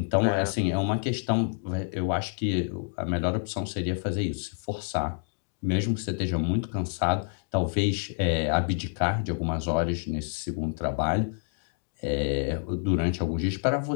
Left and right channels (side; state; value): right; silent; 59 dB below the other